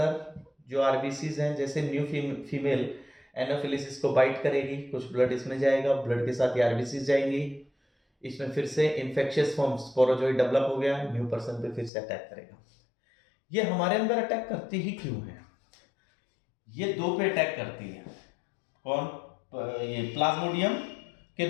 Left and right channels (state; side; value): drops out; right; at 11.9 s